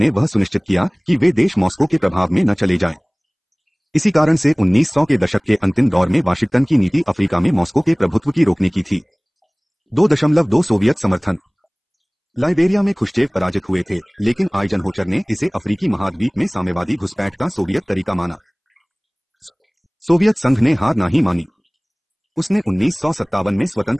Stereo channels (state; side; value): identical; both; correlation 1.00